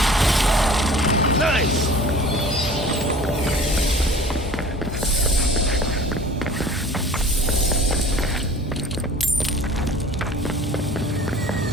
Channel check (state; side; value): normal; both; correlation 0.45